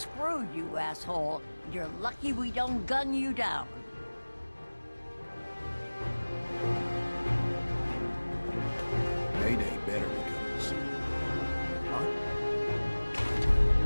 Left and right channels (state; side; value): inverted; both; correlation -1.00